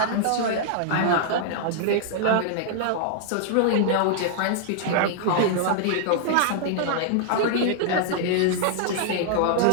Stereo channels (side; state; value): both; different; correlation -0.01